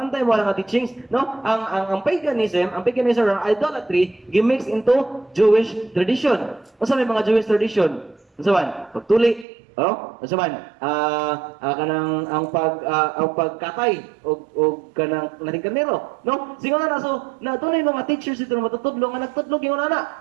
mo ang teachings, no? Ang paganism or idolatry gimix into Jewish tradition. Unsa may mga Jewish tradition? Unsa man? Pagtuli, oh? Unsa man? Kanang ang pagkatay og kanang naring karnero, no? Singon na so na dunay mga teachers dito na matutudlo nga nagtudlo ingon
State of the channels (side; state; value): left; drops out; at 9.5 s